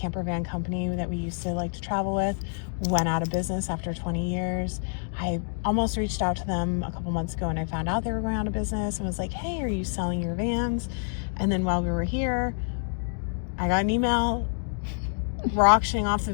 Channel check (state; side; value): silent; right; digital silence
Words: that we used to like to travel with went out of business after 20 years. I almost reached out to them a couple months ago, and I found out they were going out of business and was like, hey, are you selling your vans? And then while we were here, I got an email. We're auctioning off the